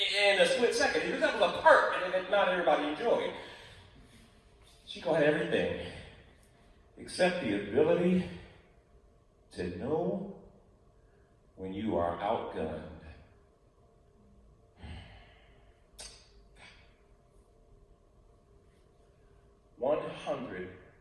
a split second. Because that was a perk, and not everybody enjoyed. Chico had everything except the ability to know when you are outgunned.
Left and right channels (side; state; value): both; identical; correlation 1.00